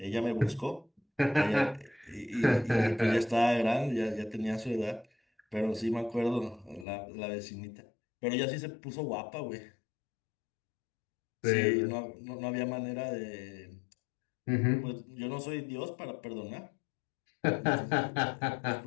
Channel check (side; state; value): right; drops out; at 6.9 s